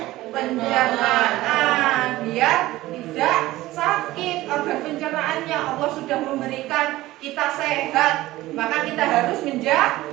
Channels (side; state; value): left; quieter; 17.1 dB